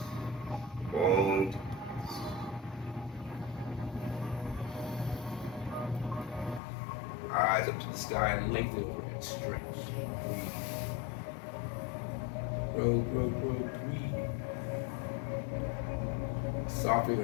Long. Eyes up to the sky, lengthen overhead, stretch. Breathe. Grow, breathe. Soften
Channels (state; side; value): drops out; right; at 6.6 s